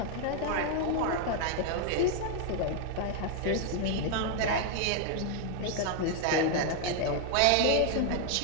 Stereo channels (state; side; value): different; both; correlation 0.00